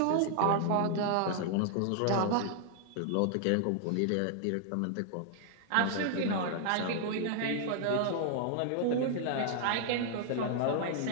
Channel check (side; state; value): both; different; correlation 0.00